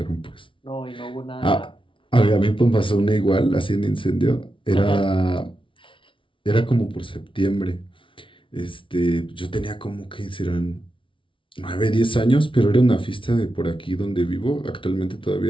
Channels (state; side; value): late; right; 0.25 ms